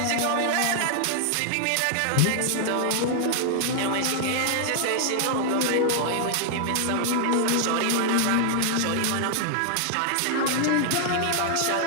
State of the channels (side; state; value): both; different; correlation -0.01